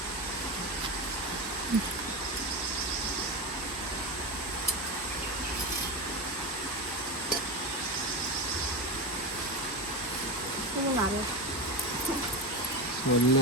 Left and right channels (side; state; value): both; normal; correlation 0.18